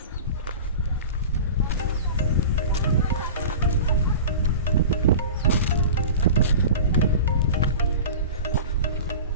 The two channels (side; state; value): both; inverted; correlation -0.34